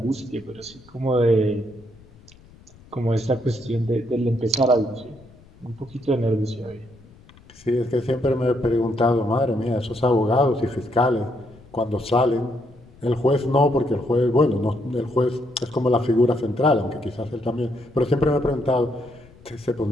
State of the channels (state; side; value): noise; left; rumble, 25 dB below the sound